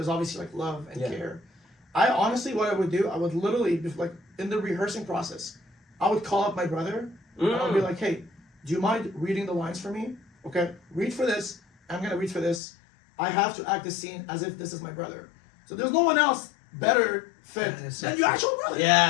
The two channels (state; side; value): drops out; right; at 12.6 s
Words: obviously like love and care. I honestly, what I would do, I would literally, like in the rehearsing process, I would call up my brother and I would be like, hey, do you mind reading the lines for me? Okay, read for this. I'm gonna read for this. I have to act this scene as if this is my brother. So there's no one else better fit than your actual brother.